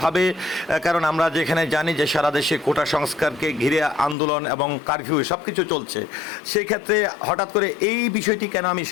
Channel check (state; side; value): drops out; right; at 4.2 s